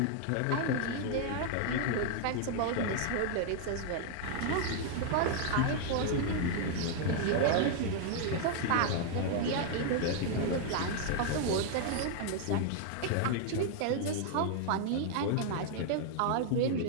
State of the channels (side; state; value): both; different; correlation 0.00